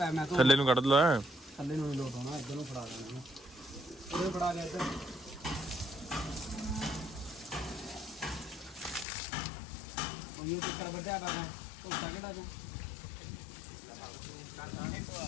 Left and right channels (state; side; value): drops out; right; at 9.1 s